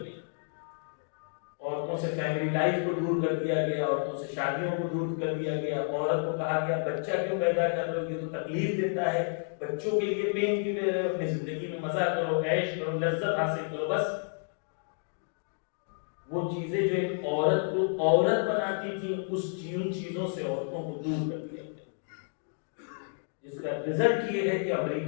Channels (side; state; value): right; silent; 57 dB below the other